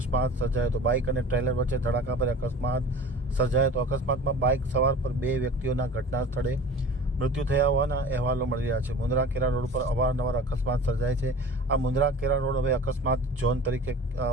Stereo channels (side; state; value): both; normal; correlation 0.40